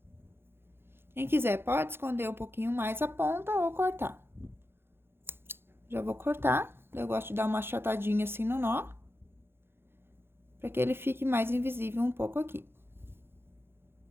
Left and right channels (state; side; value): late; left; 0.11 ms